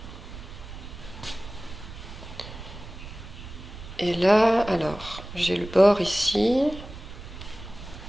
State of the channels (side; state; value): right; noise; rumble, 13 dB below the sound